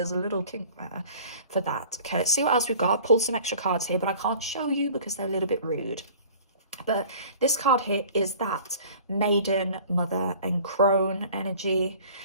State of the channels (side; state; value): both; inverted; correlation -0.47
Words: a little kink there for that. Okay, let's see what else we've got. I've pulled some extra cards here, but I can't show you because they're a little bit rude. But this card here is that Maiden, Mother, and Crone energy.